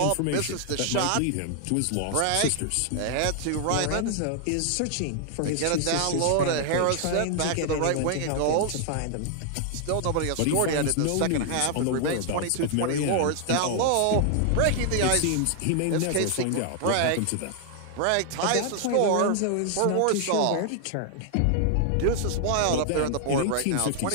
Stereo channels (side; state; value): both; different; correlation 0.00